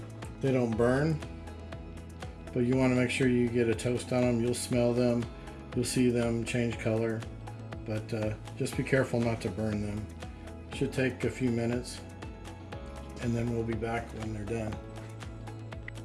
they don't burn, but you want to make sure you get a toast on them. You'll smell them, you'll see them change color, but just be careful not to burn them. Should take a few minutes, and then we'll be back when they're done.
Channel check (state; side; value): identical; both; correlation 1.00